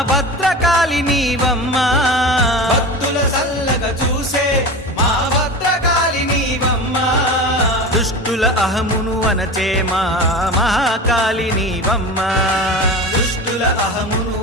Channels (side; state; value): both; normal; correlation 0.29